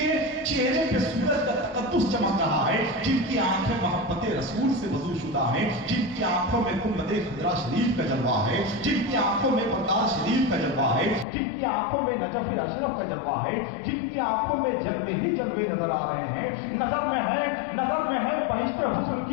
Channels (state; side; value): drops out; right; at 11.2 s